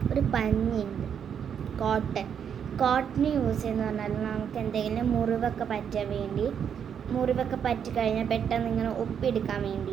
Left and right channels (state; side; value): quieter; left; 8.0 dB